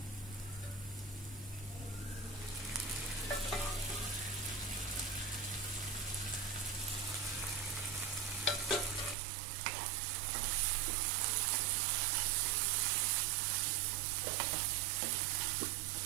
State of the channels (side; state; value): left; drops out; at 9.2 s